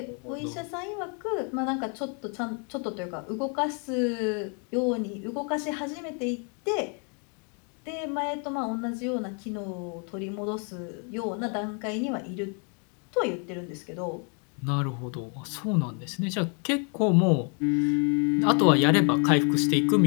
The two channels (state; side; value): quieter; right; 38.7 dB